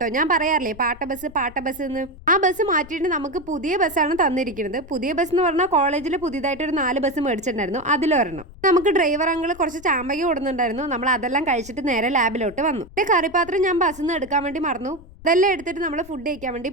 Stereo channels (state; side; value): noise; left; rumble, 20 dB below the sound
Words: ഞാൻ പറയാറില്ലേ പാട്ട ബസ് എന്ന്. ആ ബസ് മാറ്റിയിട്ട് നമുക്ക് പുതിയ ബസ്സാണ് തന്നിരിക്കുന്നത്. പുതിയ ബസ് എന്ന് പറഞ്ഞാൽ കോളേജിൽ പുതിയതായിട്ട് ഒരു 4 ബസ് മേടിച്ചിട്ടുണ്ടായിരുന്നു. അതിലൊരെണ്ണം. നമുക്ക് ഡ്രൈവർ അങ്കിൾ കുറച്ച് ചാമ്പക കൊടുക്കുന്നുണ്ടായിരുന്നു. നമ്മൾ അതെല്ലാം കഴിച്ചിട്ട് നേരെ ലാബിലോട്ട് വന്നു. കറിപ്പാത്രം ഞാൻ ബസ്സിൽ നിന്ന് എടുക്കാൻ വേണ്ടി മറന്നു. ഇതെല്ലാം എടുത്തിട്ട് നമ്മൾ ഫുഡ് കഴിക്കാൻ വേണ്ടി